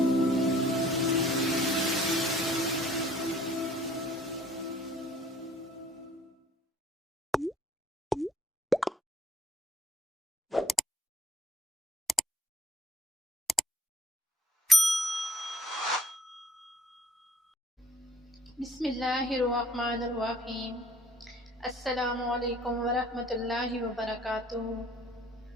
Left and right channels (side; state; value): both; normal; correlation 0.57